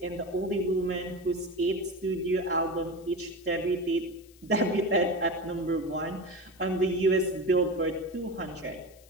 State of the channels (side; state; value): left; noise; hiss, 26 dB below the sound